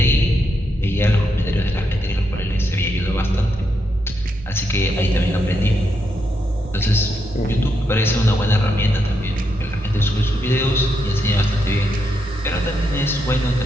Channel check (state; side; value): normal; both; correlation 0.81